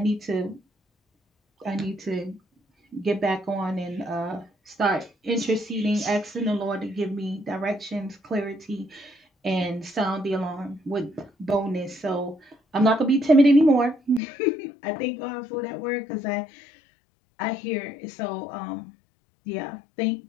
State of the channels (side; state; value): right; drops out; at 14.2 s